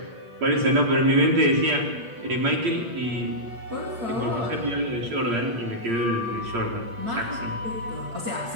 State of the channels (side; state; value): left; late; 8.7 ms